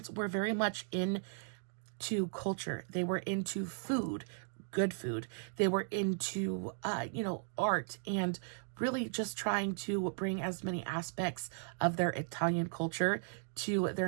were very much into culture. They were into food, good food. They were into, art, and really just trying to bring as many aspects of their Italian culture to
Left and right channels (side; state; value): left; silent; digital silence